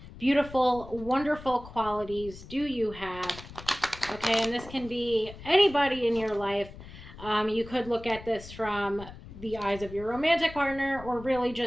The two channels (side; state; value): left; noise; rumble, 16 dB below the sound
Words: beautiful, wonderful qualities do you have? Okay, and this can be anybody in your life. You could look at this from the eyes of your romantic partner, or really